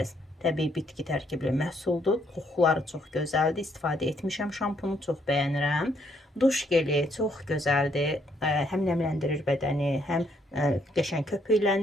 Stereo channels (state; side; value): normal; both; correlation 0.71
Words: təbii bitki tərkibli məhsuldur. Qoxuları çox gözəldir. İstifadə etmişəm şampunu, çox bəyənirəm. Duş geli çox gözəldir. Həm nəmləndirir bədəni, həm qəşəng